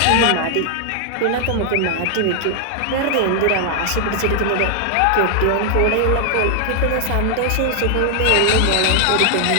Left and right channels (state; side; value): different; both; correlation 0.00